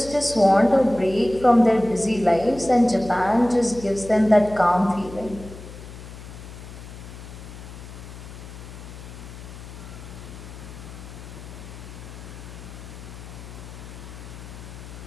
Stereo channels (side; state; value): left; noise; hum, 14 dB below the sound